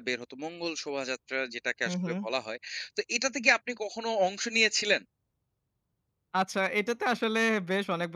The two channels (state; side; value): identical; both; correlation 1.00